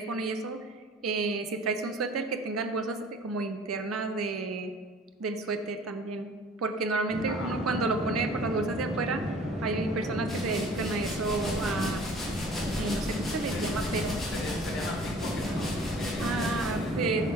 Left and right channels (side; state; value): both; normal; correlation 0.49